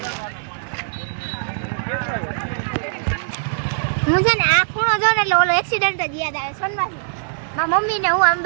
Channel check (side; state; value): left; silent; digital silence